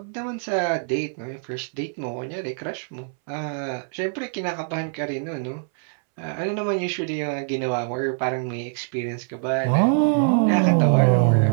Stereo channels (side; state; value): left; silent; 63 dB below the other